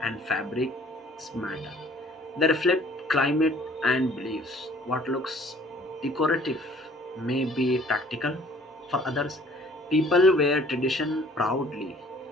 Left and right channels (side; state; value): both; normal; correlation 0.55